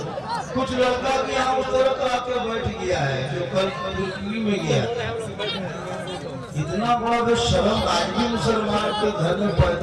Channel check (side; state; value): both; identical; correlation 1.00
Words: कुछ लड़का भी यहाँ उस तरह आके बैठ गया है जो कल दिल्ली में गया। इतना बड़ा बेशर्म आज भी मुसलमान के घर में